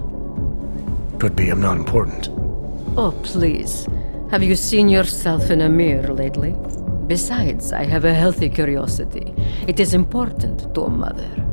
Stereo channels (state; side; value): inverted; both; correlation -1.00